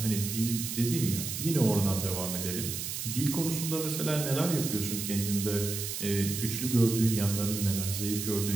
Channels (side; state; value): right; noise; hiss, 5 dB below the sound